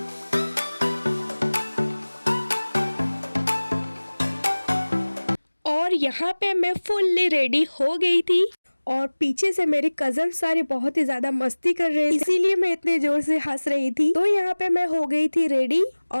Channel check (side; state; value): both; inverted; correlation -1.00